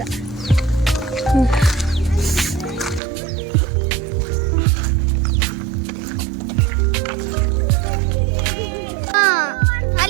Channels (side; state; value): left; drops out; at 3.0 s